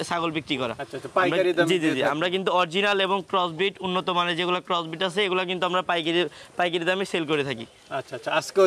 ছাগল বিক্রি করা। জি জি জি, আমরা কিন্তু অরিজিনাল এবং ক্রসবিট, উন্নত মানের যেগুলো ক্রসবিট আছে এগুলো কিন্তু আমরা পাইকারি দামে সেল করে থাকি। আচ্ছা আচ্ছা,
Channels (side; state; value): both; identical; correlation 1.00